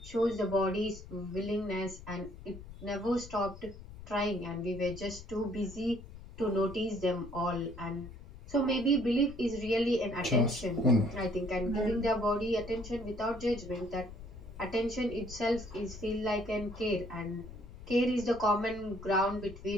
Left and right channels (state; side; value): noise; left; rumble, 15 dB below the sound